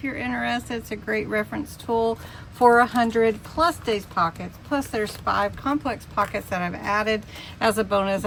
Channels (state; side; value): identical; both; correlation 1.00